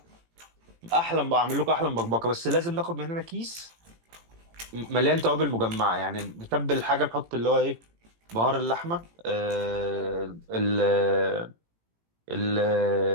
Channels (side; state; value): left; late; 18 ms